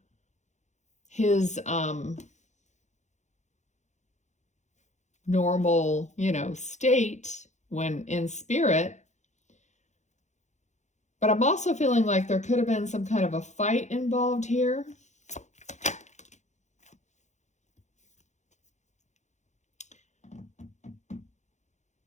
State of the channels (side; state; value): right; late; 0.34 ms